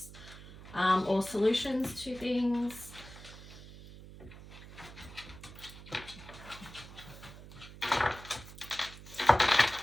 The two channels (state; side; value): noise; right; hum, 16 dB below the sound